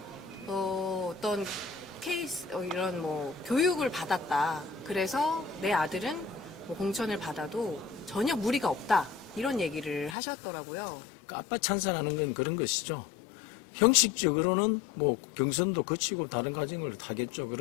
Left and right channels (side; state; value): right; drops out; at 10.2 s